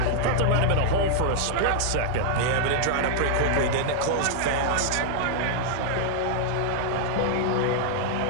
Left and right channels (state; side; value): different; both; correlation -0.01